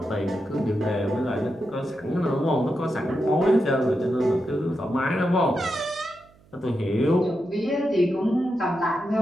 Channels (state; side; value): noise; right; hum, 29 dB below the sound